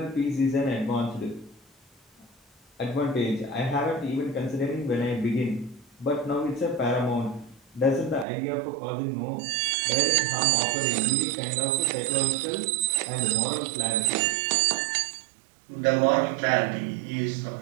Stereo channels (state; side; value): drops out; left; at 8.2 s